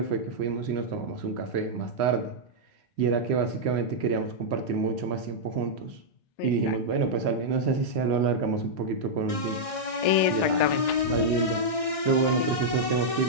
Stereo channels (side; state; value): right; late; 1.6 ms